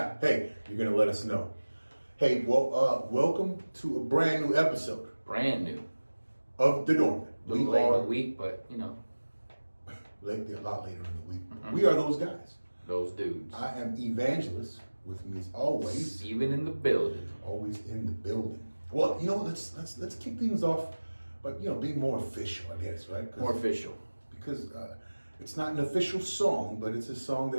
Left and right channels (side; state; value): both; inverted; correlation -1.00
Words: Hey, you're going to let us know. Hey, well, welcome to a brand new episode. Brand new. Of The Dormant. A little late in the week, but you know. A lot later in the week. Mm-hmm. We are those guys. Those dudes. I am Evangelist. With me as always. Steven in the building. Always in the building. Well, you know, let's kick things off. But, you know, being more official, I guess, right? More official. Because it's not an official song, but it's a song